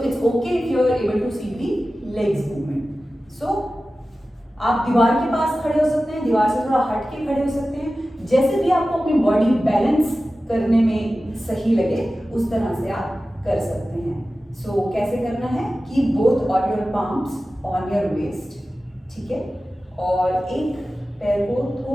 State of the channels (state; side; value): normal; both; correlation 0.95